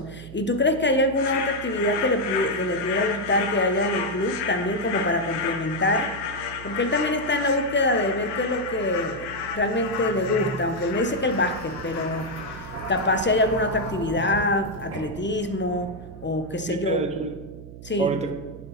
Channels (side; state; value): right; noise; hum, 15 dB below the sound